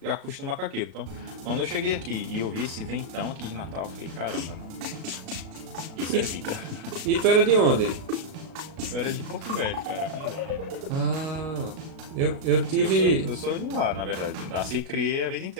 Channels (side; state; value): left; late; 37 ms